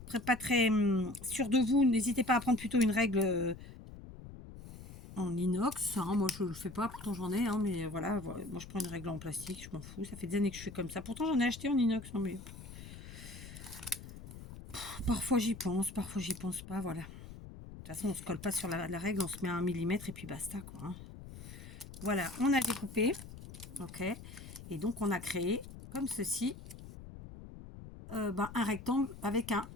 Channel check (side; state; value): left; noise; rumble, 14 dB below the sound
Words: sûr de vous, n'hésitez pas à prendre plutôt une règle en inox. Hein. Moi, je ne le fais pas, pourtant j'en ai. Hein, mais voilà, moi, je prends une règle en plastique, je m'en fous. Ça fait des années que je fais comme ça. Pourtant, j'en ai acheté en inox. Hein, mais parfois, j'y pense pas. Voilà. De toute façon, on ne se colle pas sur la règle, on se met à 1 millimètre et puis basta. Quoi, hein. Voilà, on a découpé. Ok. Et donc, on a créé comme ceci. Un rectangle avec un